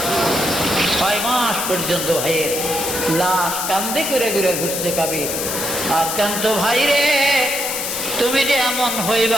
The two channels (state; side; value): noise; left; hiss, 3 dB below the sound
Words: 6 মাস পর্যন্ত ভাইয়ের লাশ কান্দে করে ঘুরে ঘুরছে কাবিল। আর কান্ত, ভাই রে তুমি যে এমন